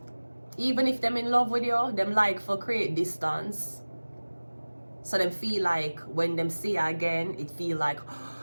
Even if them in love with you, them like for create distance. So them feel like when them see you again, it feel like,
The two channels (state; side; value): inverted; both; correlation -1.00